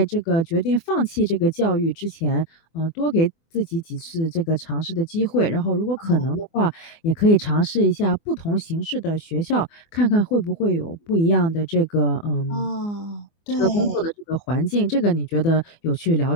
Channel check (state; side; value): late; right; 24 ms